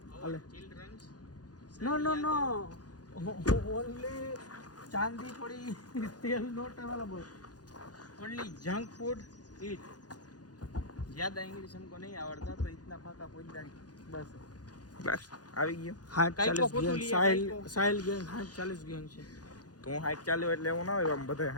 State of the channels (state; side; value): late; right; 0.69 ms